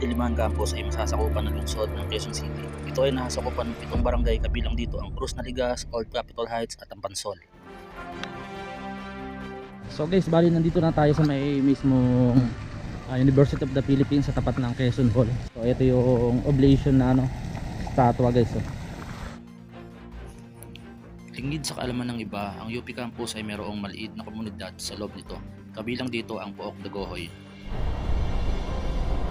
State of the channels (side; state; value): both; identical; correlation 1.00